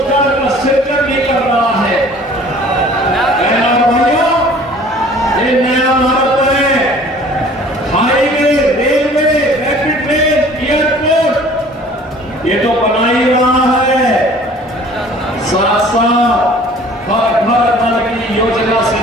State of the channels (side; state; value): both; normal; correlation 0.50